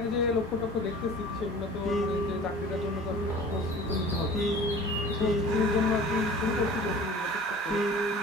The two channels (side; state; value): both; normal; correlation 0.43